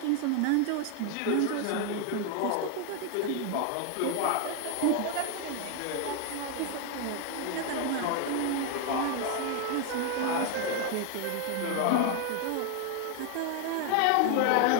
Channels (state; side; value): different; both; correlation 0.01